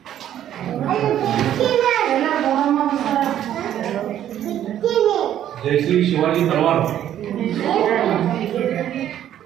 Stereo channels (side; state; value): left; quieter; 11.1 dB